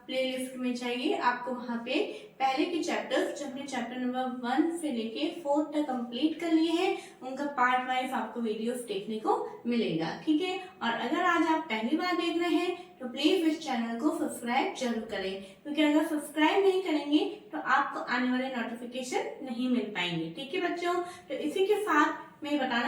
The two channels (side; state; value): both; identical; correlation 1.00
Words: प्लेलिस्ट में जाइए, आपको वहाँ पे पहले के चैप्टर्स जो हमने चैप्टर नंबर 1 से लेके 4 तक कंप्लीट कर लिए हैं उनका पार्ट वाइज आपको वीडियोस देखने को मिलेगा। ठीक है, और अगर आज आप पहली बार देख रहे हैं तो प्लीज इस चैनल को सब्सक्राइब जरूर करें, क्योंकि अगर सब्सक्राइब नहीं करेंगे तो आपको आने वाले नोटिफिकेशन नहीं मिल पाएंगे। ठीक है बच्चों, तो इसी के साथ मैं